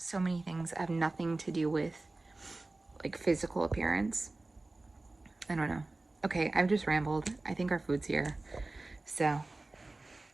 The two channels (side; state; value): left; quieter; 3.1 dB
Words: many things have nothing to do with, like, physical appearance. I don't know. Okay, I've just rambled. I think our food's here. So,